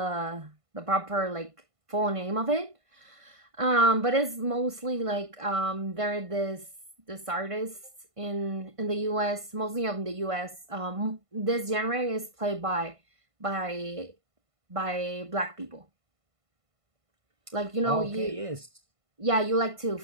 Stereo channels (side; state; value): left; late; 1.5 ms